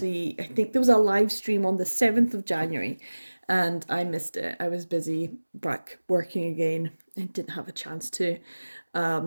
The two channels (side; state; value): both; inverted; correlation -1.00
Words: I think there was a live stream on the 7th of January, and I missed it. I was busy back working again and didn't have a chance to